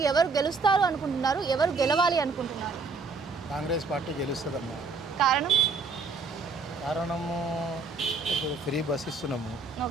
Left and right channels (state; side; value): quieter; left; 4.3 dB